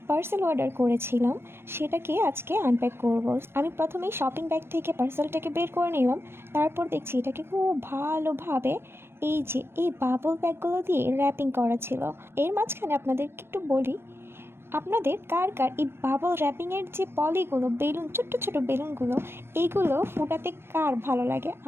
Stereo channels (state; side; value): late; left; 0.12 ms